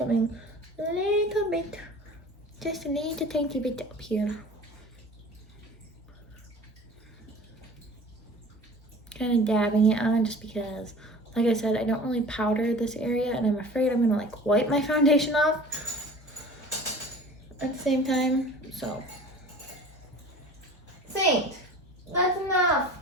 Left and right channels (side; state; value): both; normal; correlation 0.42